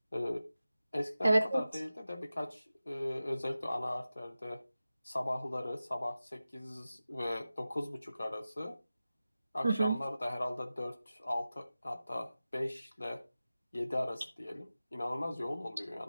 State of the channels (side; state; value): both; inverted; correlation -0.95